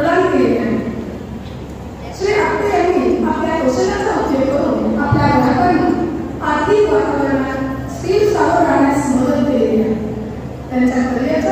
केली आहे। श्री आपटे यांनी आपल्या कौशल्याचा उपयोग करून आपल्या ग्राहकांना आर्थिक वातावरणात स्थिर सावध राहण्यास मदत केली आहे। त्यांच्या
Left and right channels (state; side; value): identical; both; correlation 1.00